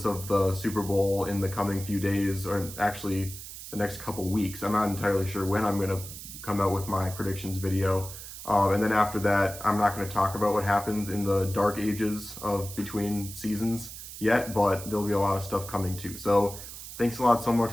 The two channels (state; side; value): noise; right; hiss, 12 dB below the sound